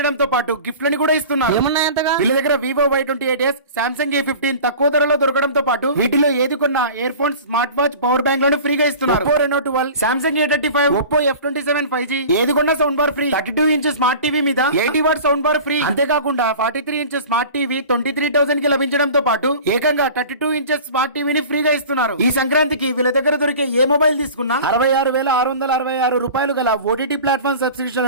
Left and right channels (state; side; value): inverted; both; correlation -0.39